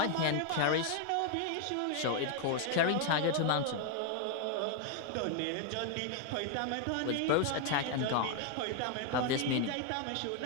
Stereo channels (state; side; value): different; both; correlation 0.00